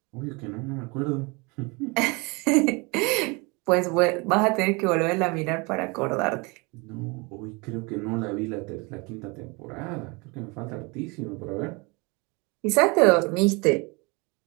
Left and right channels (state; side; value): quieter; left; 27.9 dB